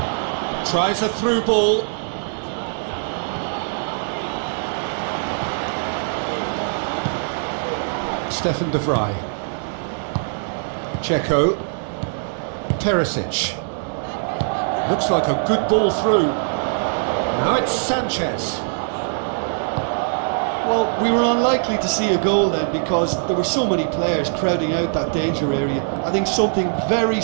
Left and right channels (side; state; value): left; silent; digital silence